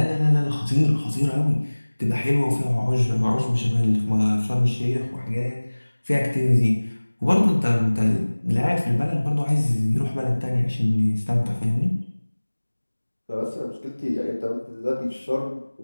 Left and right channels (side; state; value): both; inverted; correlation -1.00